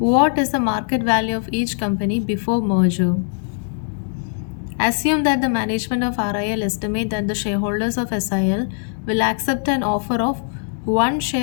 is the market value of each company before merger? Assume that the management of RIL estimate that the shareholders of SIL will accept an offer of 1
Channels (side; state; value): right; silent; digital silence